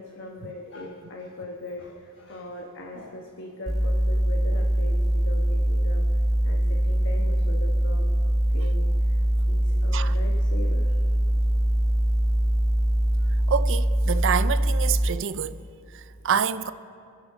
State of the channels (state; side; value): normal; both; correlation 0.88